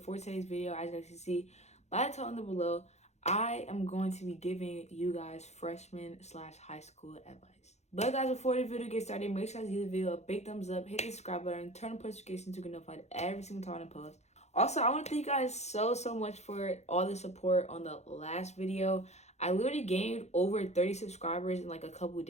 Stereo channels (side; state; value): right; late; 0.32 ms